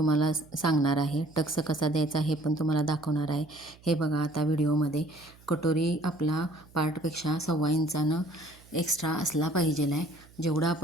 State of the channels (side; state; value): right; noise; hum, 25 dB below the sound